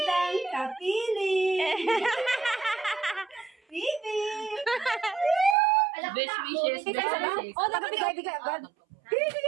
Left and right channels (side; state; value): left; drops out; at 5.6 s